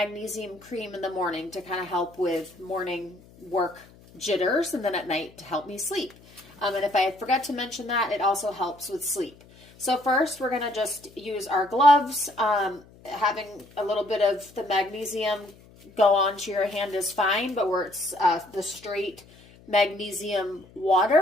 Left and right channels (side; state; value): left; noise; hum, 25 dB below the sound